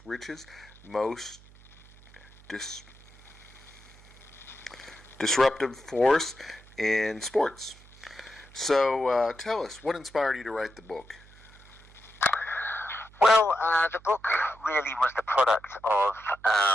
Richest, Most Disruptive Force in Sports. So tell us, what inspired you to write the book? Well, the book really was the product of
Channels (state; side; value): noise; right; hum, 24 dB below the sound